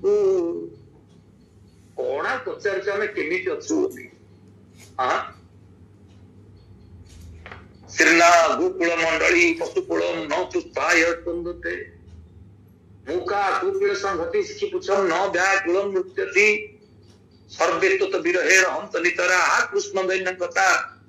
କଣ ପଚାରୁଛୁ ଆମେ କେମିତି ଅଛୁ ବୋଲି? ଶ୍ରୀନା ଗୋକୁଳ ମଣ୍ଡଳୀ ପଶୁକୁଳମ୍ ନ ପୁଷ୍ପାୟ ସ୍ପନ୍ଦତେ, ମୁକା କୁକୁଳ ସଂହତି ଶିଖି ପୁଛମ୍ ନ ବ୍ୟାକୁଳମ୍ ନୃତ୍ୟତି, ସର୍ବେ ତତ ବିରହେଣ ହନ୍ତ ନିତରା କୃଷ୍ଣ ଦୈନ୍ୟକତା,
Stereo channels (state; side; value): identical; both; correlation 1.00